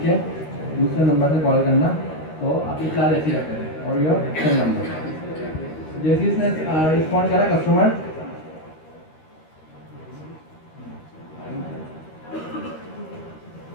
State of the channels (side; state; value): right; late; 13 ms